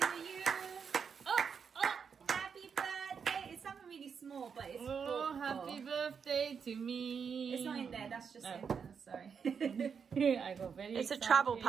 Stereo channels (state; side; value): quieter; left; 6.5 dB